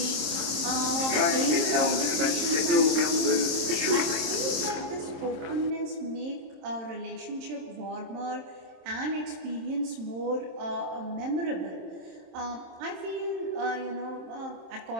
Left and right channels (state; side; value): late; left; 26 ms